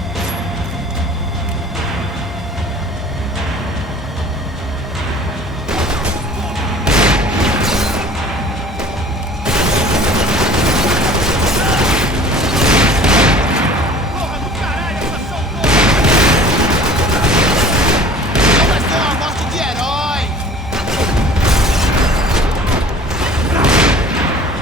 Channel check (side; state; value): both; normal; correlation 0.47